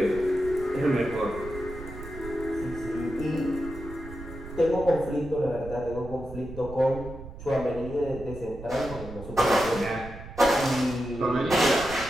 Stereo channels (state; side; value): noise; right; rumble, 13 dB below the sound